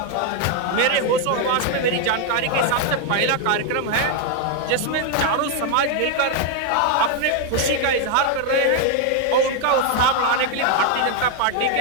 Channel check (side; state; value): both; different; correlation 0.01